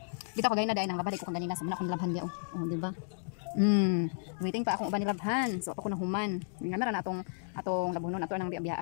Bitaw kagay na day nang labad ko kanina sa muna akong labhan dia. Oh, di ba? Waiting pa akong uban nilabhan. So ako na human. Nga na atong labunon ato nang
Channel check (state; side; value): silent; right; digital silence